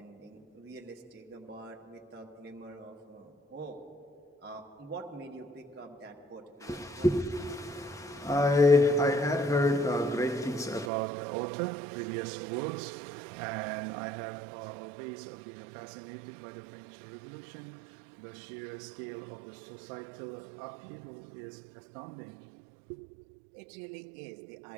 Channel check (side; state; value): left; drops out; at 10.9 s